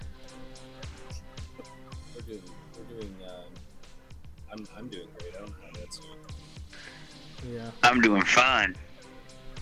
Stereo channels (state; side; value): identical; both; correlation 1.00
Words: I'm doing great. I don't know how that's doing. Yeah. I'm doing fine.